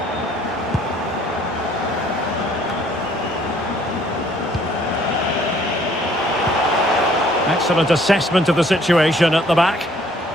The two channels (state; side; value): normal; both; correlation 0.60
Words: Excellent assessment of the situation at the back.